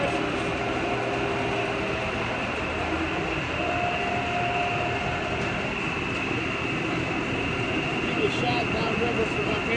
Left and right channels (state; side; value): identical; both; correlation 1.00